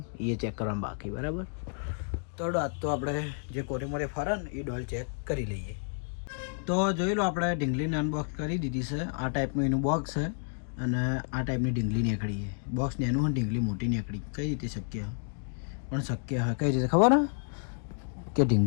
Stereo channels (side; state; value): right; silent; 57 dB below the other